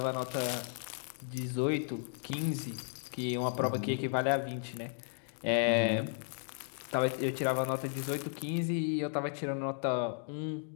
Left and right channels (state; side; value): silent; right; digital silence